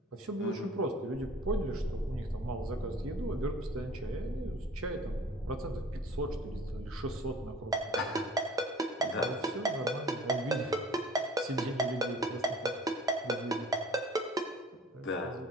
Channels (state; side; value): normal; both; correlation 0.48